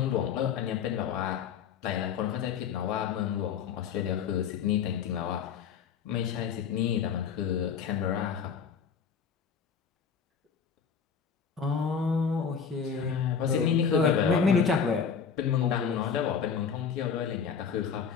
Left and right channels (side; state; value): right; quieter; 6.7 dB